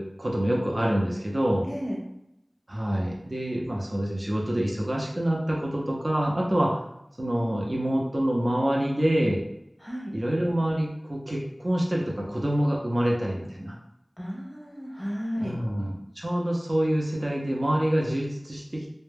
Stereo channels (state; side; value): normal; both; correlation 0.98